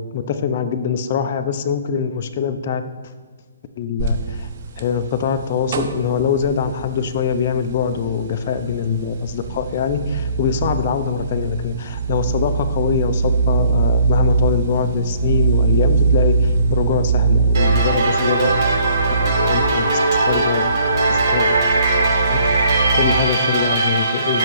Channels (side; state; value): both; inverted; correlation -0.57